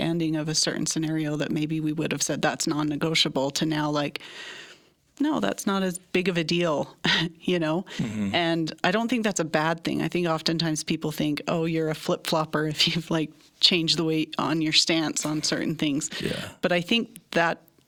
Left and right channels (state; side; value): identical; both; correlation 1.00